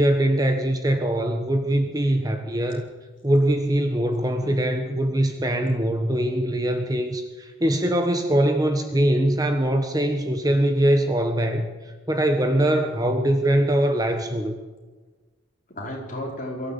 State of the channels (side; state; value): both; normal; correlation 0.82